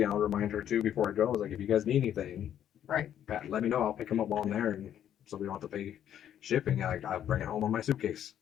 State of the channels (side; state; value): right; quieter; 10.3 dB